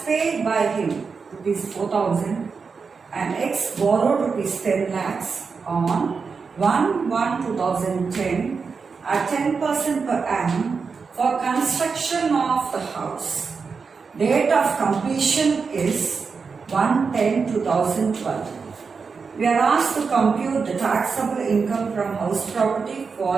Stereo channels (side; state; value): left; quieter; 5.2 dB